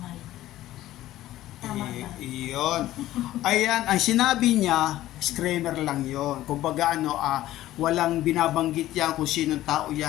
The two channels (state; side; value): quieter; right; 14.7 dB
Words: Tama ba? Iyon. Ayan, ang sinabi niya, disclaimer lang yon. Kumbaga walang binabanggit yan kung sinong tao